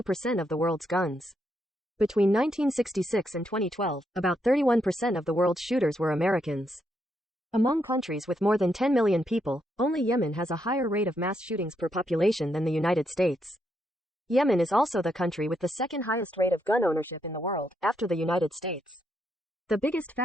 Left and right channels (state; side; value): normal; both; correlation 0.79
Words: of the world's guns. Between 1966 and 2012, about 31% of the world's shooters were Americans. Among countries with more than 10 million people, only Yemen has a higher rate of mass shootings per population than the United States. Yemen is also the country with the second highest rate of gun ownership in the world, after the United States. The biggest